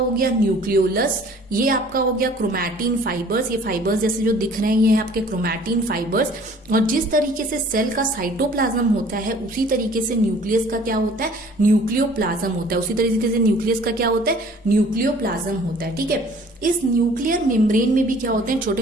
गया न्यूक्लियोलस। ये आपका हो गया क्रोमैटिन फाइबर्स। ये फाइबर्स जैसे जो दिख रहे हैं ये है आपके क्रोमैटिन फाइबर्स। और जिस तरीके से सेल का साइटोप्लाज्म होता है उसी तरीके से न्यूक्लियस का क्या होता है? न्यूक्लियोप्लाज्म होता है। उसी तरीके से न्यूक्लियस का क्या होता है? न्यूक्लियोप्लाज्म होता है। ठीक है। इस न्यूक्लियर मेम्ब्रेन में भी क्या होते हैं?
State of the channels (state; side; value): normal; both; correlation 0.52